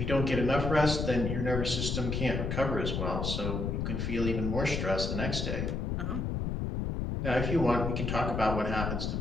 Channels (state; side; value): noise; left; rumble, 1 dB below the sound